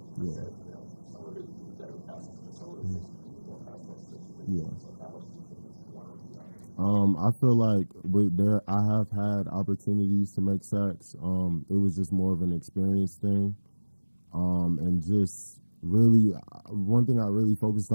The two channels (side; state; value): both; inverted; correlation -1.00